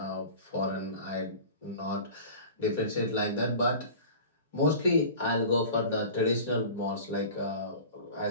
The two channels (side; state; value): both; inverted; correlation -0.39